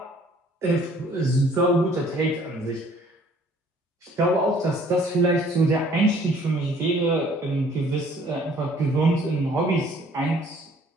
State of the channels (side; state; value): both; normal; correlation 0.57